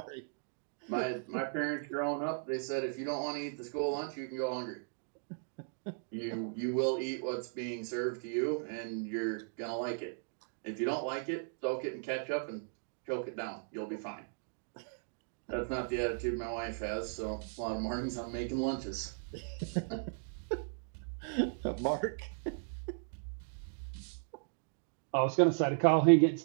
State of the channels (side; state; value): left; silent; digital silence